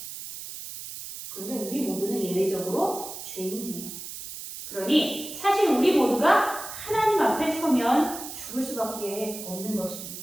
그런데 우리 모두는 예외적으로 죄인이에요. 그러니 사실 우리 모두가 하나님 앞에 서면 죽을 수밖에 없는 것입니다.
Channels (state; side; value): noise; right; hiss, 10 dB below the sound